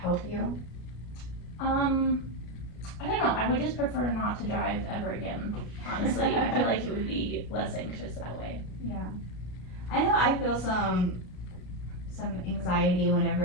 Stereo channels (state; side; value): late; right; 33 ms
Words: you? I don't know, I would just prefer not to drive ever again, honestly. I feel like it would be less anxious that way. Yeah. I know I feel some anxiety